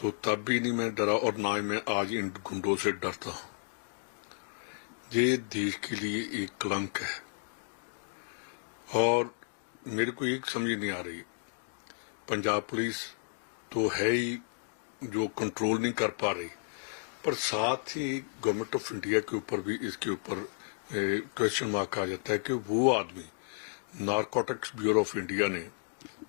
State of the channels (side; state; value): right; silent; digital silence